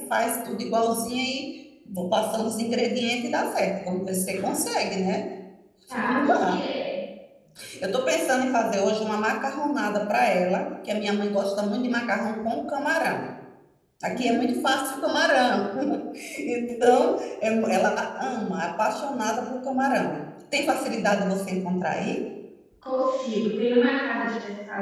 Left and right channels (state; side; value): identical; both; correlation 1.00